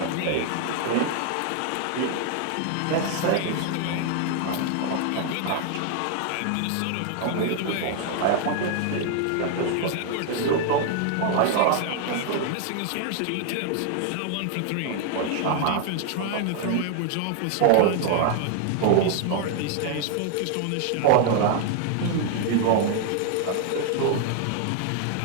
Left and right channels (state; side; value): different; both; correlation 0.00